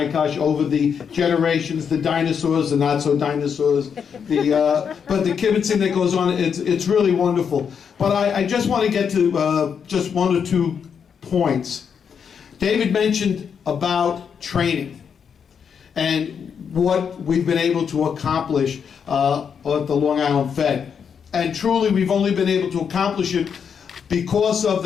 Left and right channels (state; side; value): quieter; right; 7.0 dB